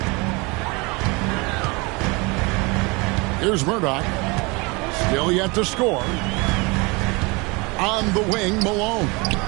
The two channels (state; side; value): quieter; left; 26.9 dB